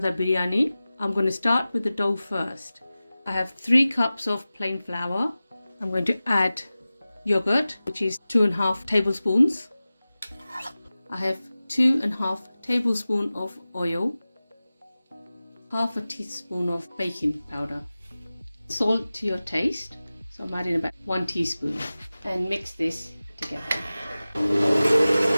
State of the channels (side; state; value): both; inverted; correlation -0.96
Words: Biryani. I'm going to start with the dough first. I have 3 cups of plain flour. I'm going to add yogurt, which is 2.5 tablespoons. I have 2.5 tablespoons of oil, half a teaspoon of baking powder, salt to your taste. So I'm adding about 1 teaspoon and mix this together.